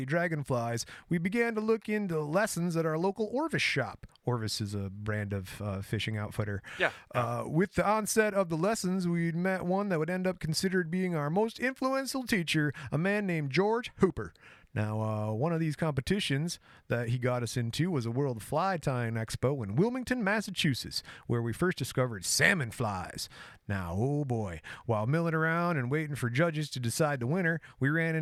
dragonflies, we began to look into lessons at our local Orvis shop. Orvis is a brand of fishing outfitter. Yeah. With the onset of the lessons, we'd met one that would end up considered being our most influential teacher, a man named George Hooper. Now, one of these competitions that he got us into was a World Fly Tying Expo in Wilmington, Massachusetts, where we first discovered salmon flies. Now, oh boy, while milling around and waiting for judges to decide the winner, we ran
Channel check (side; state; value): both; identical; correlation 1.00